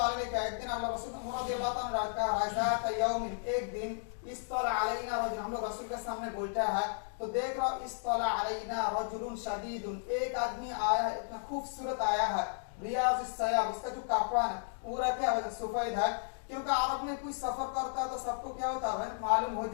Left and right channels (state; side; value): silent; right; digital silence